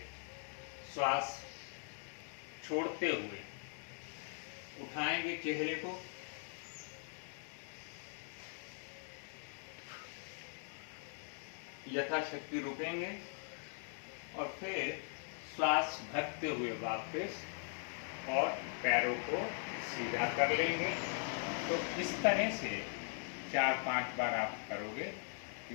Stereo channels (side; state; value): right; silent; 51 dB below the other